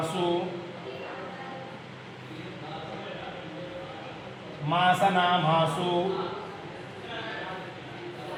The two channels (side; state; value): both; identical; correlation 1.00